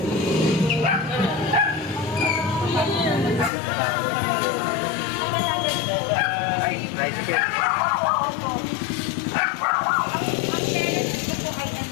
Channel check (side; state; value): right; drops out; at 3.5 s